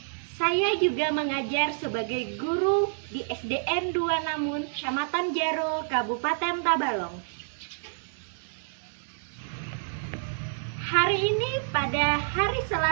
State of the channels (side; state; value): left; silent; digital silence